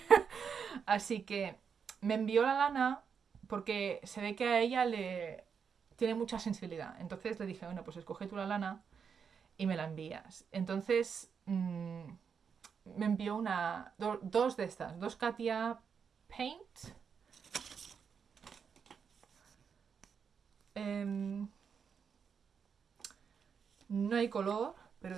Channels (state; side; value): quieter; left; 6.6 dB